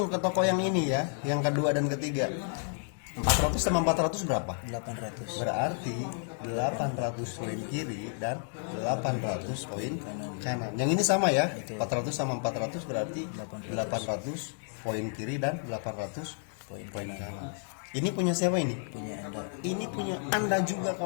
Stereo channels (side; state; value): right; silent; 57 dB below the other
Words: ke toko yang ini ya, yang kedua dan ketiga. 400 sama 400 berapa? 800. Berarti 800 poin kiri dan 800 poin kanan. Yang ini sama ya, 400 sama 400 berarti 800 poin kiri dan 800 poin kanan. Ini punya siapa ini? Punya Anda. Ini punya Anda juga